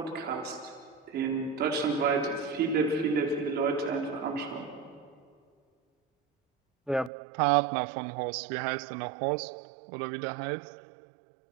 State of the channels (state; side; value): drops out; left; at 7.1 s